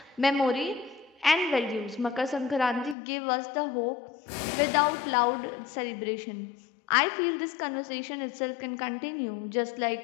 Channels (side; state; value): right; drops out; at 3.0 s